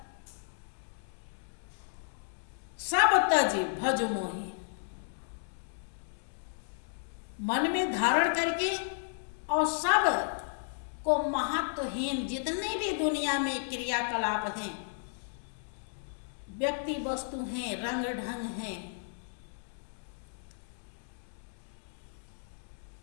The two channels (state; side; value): silent; right; digital silence